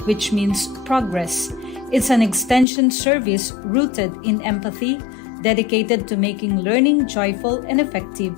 which means progress. It's an extension service rooted in empathy, dedicated to making learning joyful and effective,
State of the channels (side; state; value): right; drops out; at 2.7 s